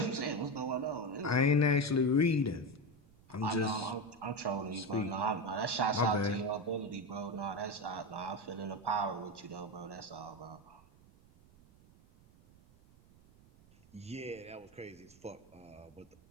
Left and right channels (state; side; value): noise; right; rumble, 26 dB below the sound